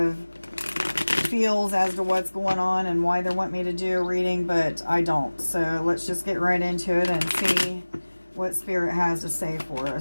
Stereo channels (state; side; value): inverted; both; correlation -1.00